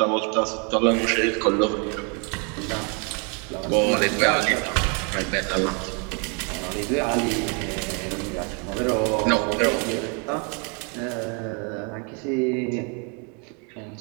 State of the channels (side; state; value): left; quieter; 35.8 dB